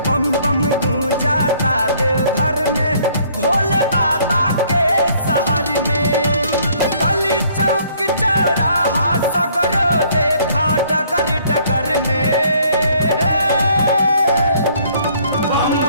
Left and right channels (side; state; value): both; inverted; correlation -0.61